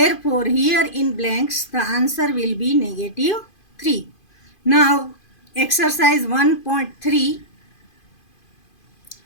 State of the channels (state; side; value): late; right; 2.5 ms